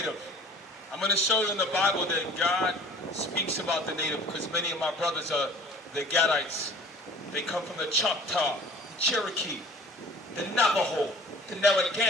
I'm going to show you in the Bible that God speaks about the Native because many of my brothers are the Gadites. They come from the Choctaw, the Cherokee, the Navajo, the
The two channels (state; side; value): normal; both; correlation 0.46